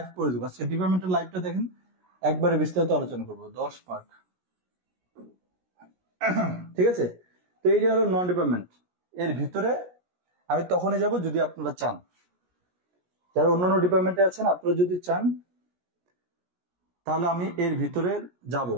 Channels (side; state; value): left; late; 17 ms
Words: করে দেবো। আজকে ডিপার্টমেন্টের লাইভটা দেখেন, একবারে বিস্তারিত আলোচনা করবো, 10 মার্ক, ঠিক আছে? তো এই যে হলো নন ডিপার্টমেন্ট। এর ভিতরে আমি তখনই যাব যদি আপনারা চান। যারা অন্যান্য ডিপার্টমেন্টে আছেন, আপনারা যদি চান তাহলে আমি এর ভিতরে যাব,